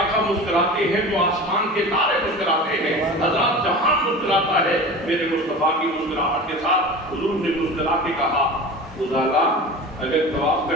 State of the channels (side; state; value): both; normal; correlation 0.34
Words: مسکراتے ہیں تو آسمان کے تارے مسکراتے ہیں، حضرات جہاں مسکراتا ہے. میرے مصطفیٰ کی مسکراہٹ کے ساتھ حضور نے مسکرا کے کہا خدا اگر طواف